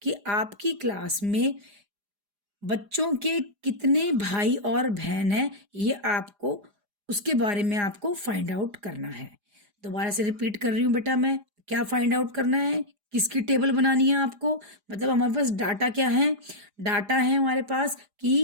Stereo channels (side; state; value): left; late; 4.9 ms